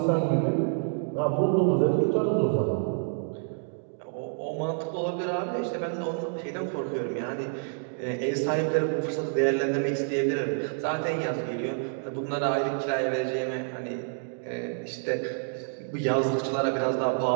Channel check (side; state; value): left; silent; 59 dB below the other